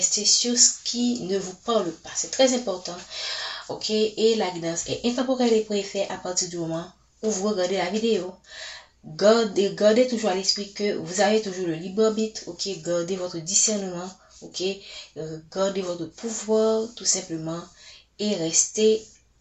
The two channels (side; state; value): both; identical; correlation 1.00